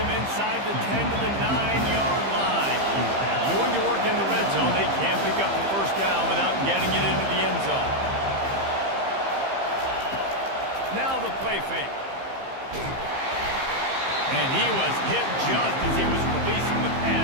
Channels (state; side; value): late; left; 15 ms